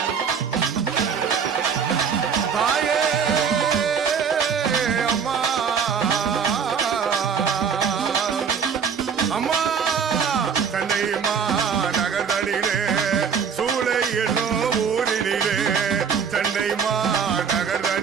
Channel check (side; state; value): left; quieter; 6.7 dB